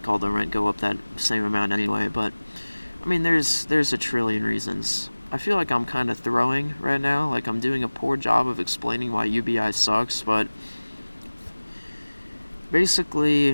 all the rent go up that same amount anyway. But I mean, there's a trillion reasons. I feel like I'm kind of throwing right now, like I'm doing a poor job of explaining why UBI sucks, but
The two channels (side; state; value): both; inverted; correlation -1.00